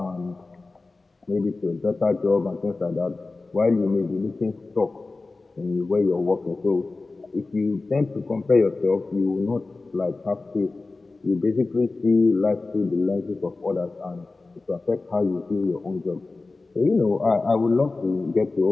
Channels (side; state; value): right; quieter; 3.5 dB